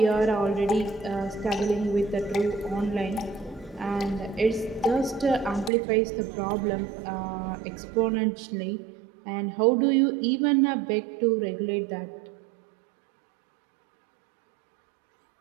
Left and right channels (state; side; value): drops out; left; at 5.7 s